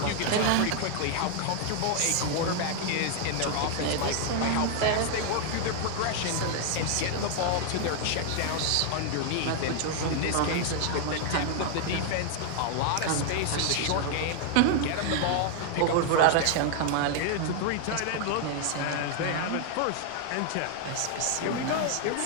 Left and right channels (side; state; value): both; different; correlation 0.00